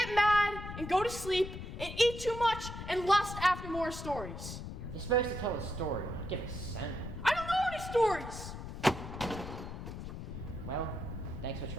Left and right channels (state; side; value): noise; left; rumble, 8 dB below the sound